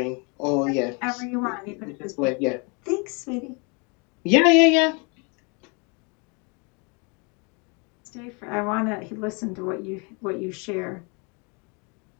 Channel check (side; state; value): right; quieter; 32.4 dB